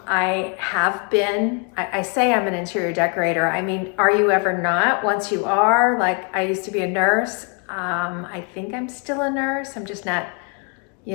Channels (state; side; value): quieter; right; 37.0 dB